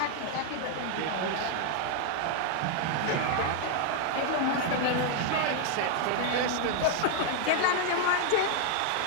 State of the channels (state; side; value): different; both; correlation 0.00